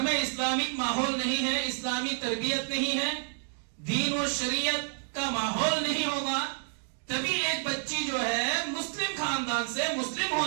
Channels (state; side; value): silent; left; digital silence